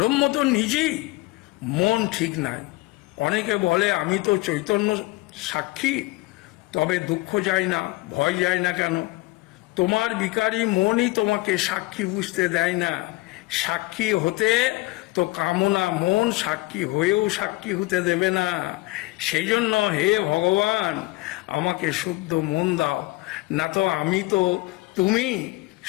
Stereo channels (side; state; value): right; quieter; 20.8 dB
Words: তো নিজেই। মন ঠিক নাই। অনেকে বলে আমি তো চৈতন্য সাক্ষী, তবে দুঃখ যায় না, ভয় যায় না কেন? তোমার বিকারী মনই তোমাকে সাক্ষী বুঝতে দেয় না। সাক্ষী হতে তো কামনা মন সাক্ষী হয়েও সাক্ষী হতে দেবে না। সেই জন্য হে ভগবান, আমাকে শুদ্ধ মন দাও, না তো আমি তো তুমি,